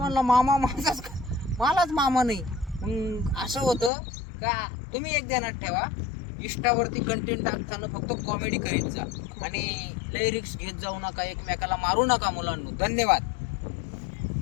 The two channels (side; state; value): right; drops out; at 3.9 s